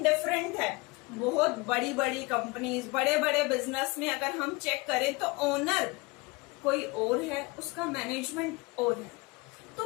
डिफरेंट है. बहुत बड़ी बड़ी कंपनीज, बड़े बड़े बिजनेस में अगर हम चेक करें तो ओनर कोई और है, उसका मैनेजमेंट और है.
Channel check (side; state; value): right; quieter; 25.6 dB